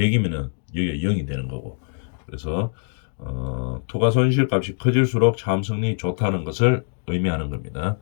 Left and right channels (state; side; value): silent; right; 63 dB below the other